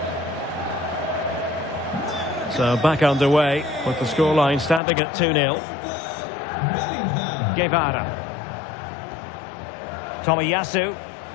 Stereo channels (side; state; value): right; drops out; at 4.8 s